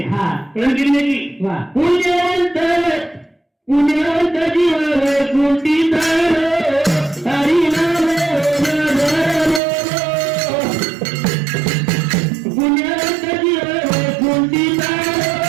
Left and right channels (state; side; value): drops out; left; at 9.6 s